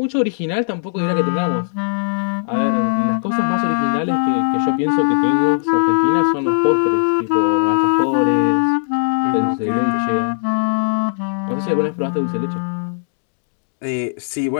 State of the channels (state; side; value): silent; right; digital silence